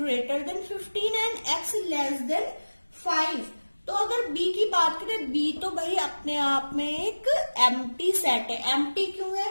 than 15 and x less than 5। तो अगर b की बात करें, b तो भाई अपने आप में एक एम्प्टी सेट है। एम्प्टी क्यों है,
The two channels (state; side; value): inverted; both; correlation -1.00